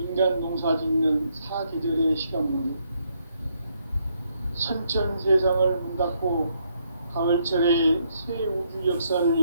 농사 짓는 사계절의 시간론이다. 선천 세상을 문 닫고 가을철에 새 우주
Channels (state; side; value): inverted; both; correlation -0.74